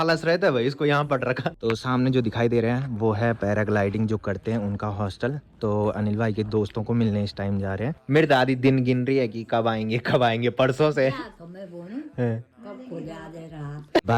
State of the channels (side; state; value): both; identical; correlation 1.00